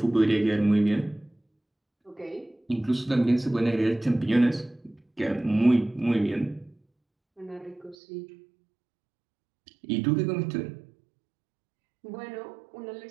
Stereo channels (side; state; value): left; drops out; at 8.0 s